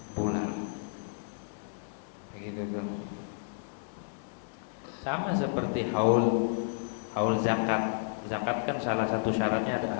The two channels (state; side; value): silent; right; digital silence